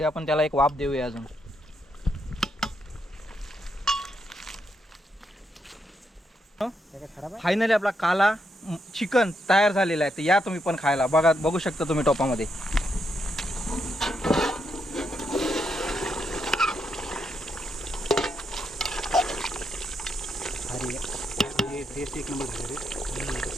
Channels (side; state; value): both; normal; correlation 0.80